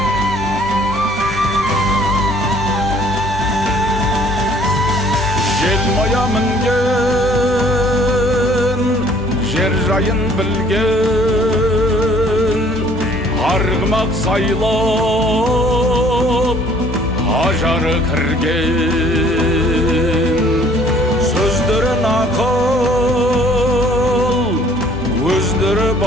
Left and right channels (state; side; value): normal; both; correlation 0.57